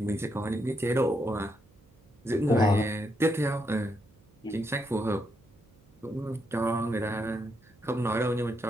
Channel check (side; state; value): right; noise; hum, 30 dB below the sound